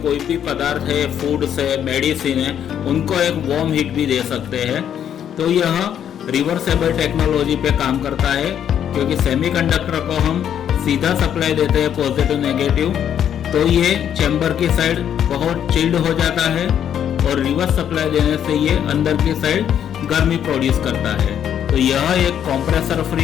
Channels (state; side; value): quieter; right; 9.4 dB